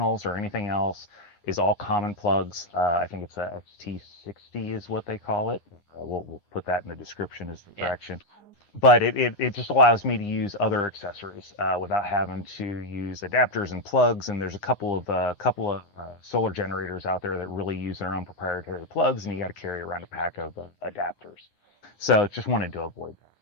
or anything else is all common plugs. I think it's a XT60 is what they call it. We'll put that in the description as the direction. But it just allows me to use other accessories without having to use adapters and plugs. And there's a couple of solar generators out there that really use their own proprietary plugs, and you got to carry around a pack of adapters. So just wanted to avoid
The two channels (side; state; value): right; late; 9.8 ms